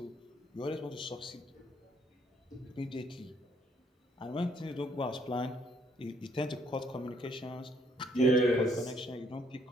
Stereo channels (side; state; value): both; normal; correlation 0.68